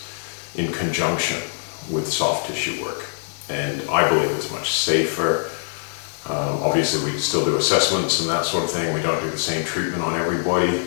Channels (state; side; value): silent; right; 64 dB below the other